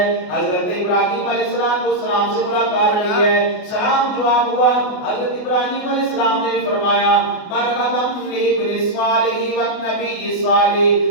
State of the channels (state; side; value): late; right; 28 ms